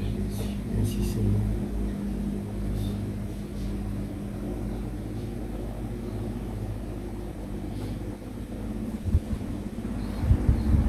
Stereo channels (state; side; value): identical; both; correlation 1.00